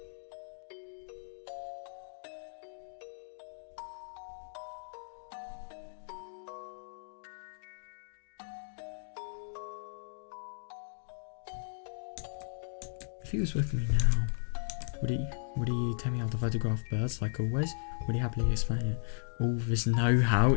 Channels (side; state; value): right; silent; digital silence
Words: If he was with me now, would he tell me how to photograph birds like always? Would he happily explain it? All this know-how,